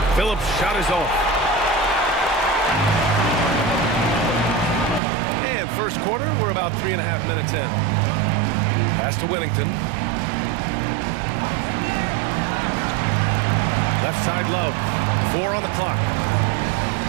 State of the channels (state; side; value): drops out; left; at 5.0 s